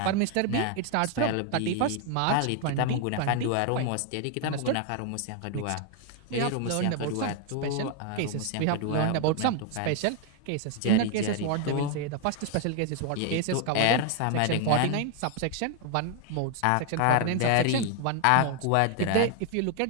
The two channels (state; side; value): different; both; correlation 0.00